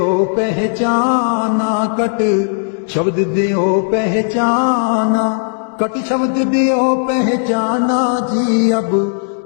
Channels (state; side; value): silent; right; 69 dB below the other